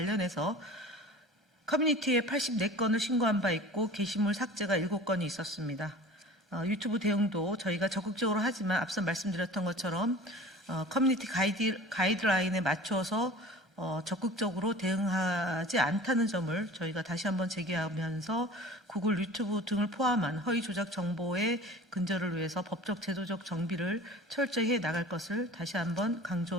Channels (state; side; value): normal; both; correlation 0.41